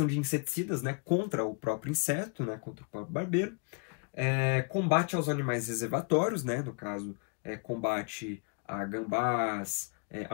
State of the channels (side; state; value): right; quieter; 35.7 dB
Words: de inseticidas, né, contra o próprio inseto, né, contra o próprio barbeiro. Combate aos animais reservatórios, né, no caso, combate a gambás,